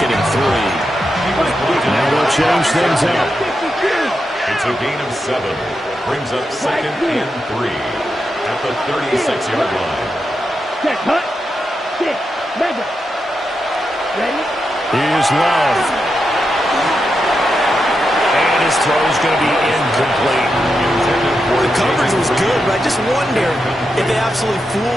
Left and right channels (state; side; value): normal; both; correlation 0.86